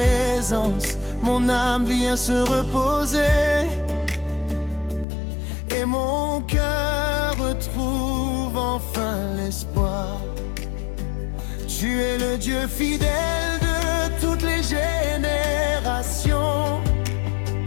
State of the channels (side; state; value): right; drops out; at 5.1 s